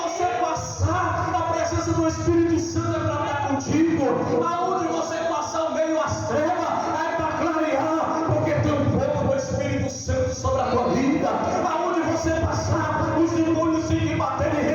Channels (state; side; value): identical; both; correlation 1.00